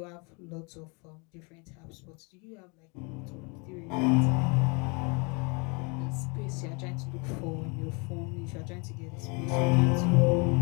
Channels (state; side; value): quieter; right; 31.6 dB